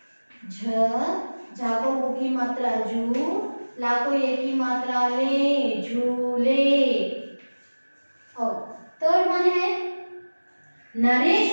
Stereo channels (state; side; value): inverted; both; correlation -1.00